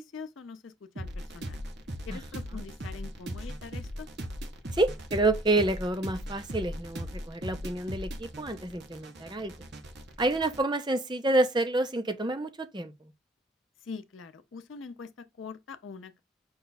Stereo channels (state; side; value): normal; both; correlation 0.57